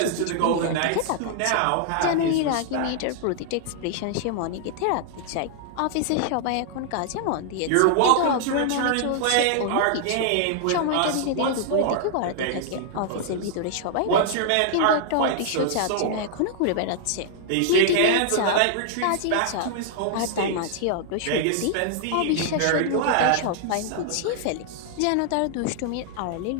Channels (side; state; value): both; different; correlation -0.01